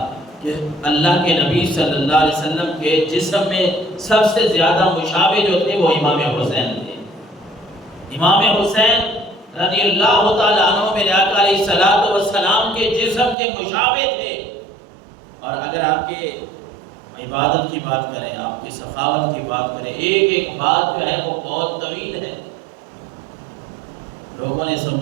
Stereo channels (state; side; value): drops out; left; at 13.4 s